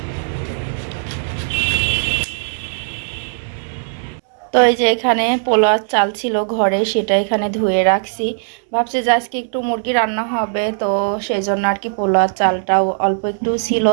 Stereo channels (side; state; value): left; silent; digital silence